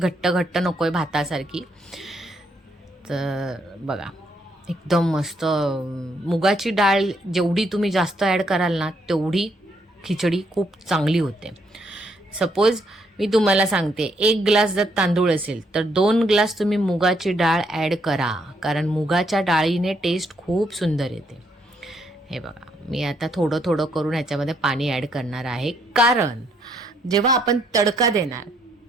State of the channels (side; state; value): both; normal; correlation 0.73